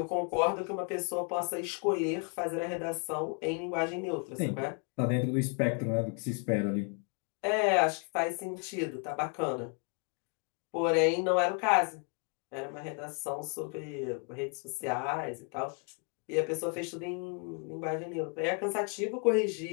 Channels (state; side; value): quieter; right; 38.1 dB